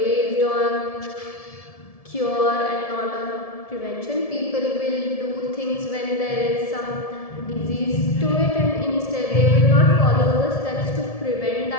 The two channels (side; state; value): right; late; 1.7 ms